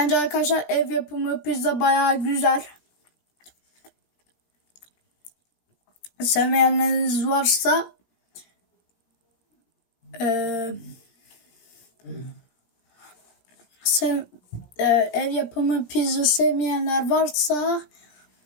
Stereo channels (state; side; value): late; right; 17 ms